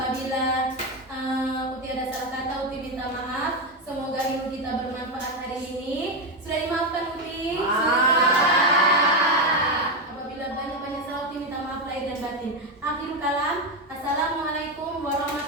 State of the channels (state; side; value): normal; both; correlation 0.10